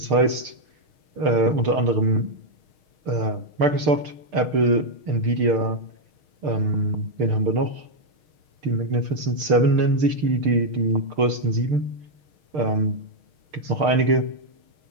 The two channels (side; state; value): left; late; 6.6 ms